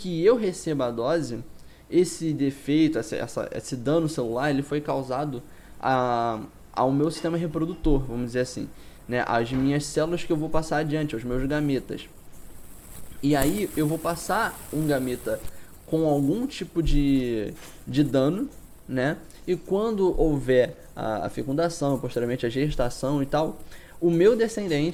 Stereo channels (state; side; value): identical; both; correlation 1.00